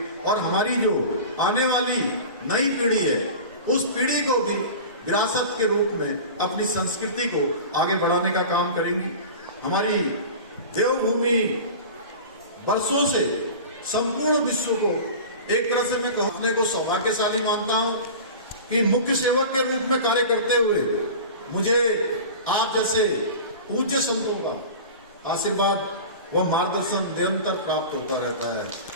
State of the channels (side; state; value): both; inverted; correlation -0.35